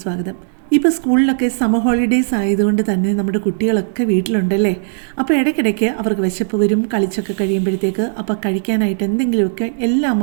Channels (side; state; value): left; silent; digital silence